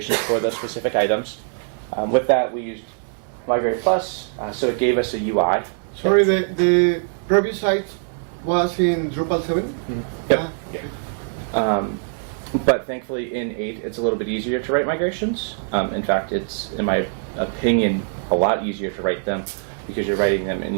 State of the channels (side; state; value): left; silent; digital silence